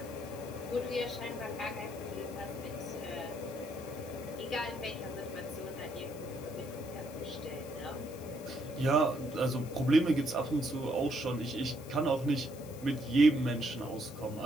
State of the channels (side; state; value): left; noise; hiss, 19 dB below the sound